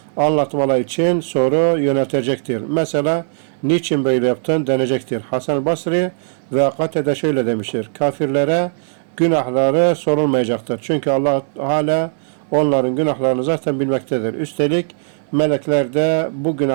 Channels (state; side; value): silent; left; digital silence